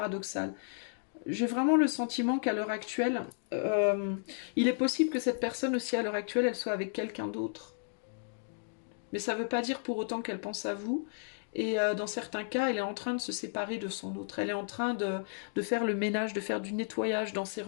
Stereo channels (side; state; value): right; silent; digital silence